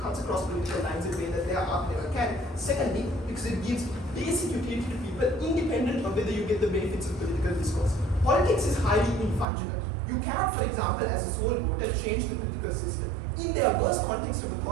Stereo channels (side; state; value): left; drops out; at 9.5 s